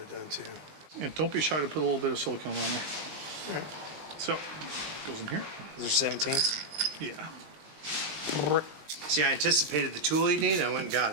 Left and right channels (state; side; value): late; left; 19 ms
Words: done too. and don't be shy to put a little bit of silicone on there. So goes in here. Those are 17. Yeah. See, I anticipated the tool you need. I went and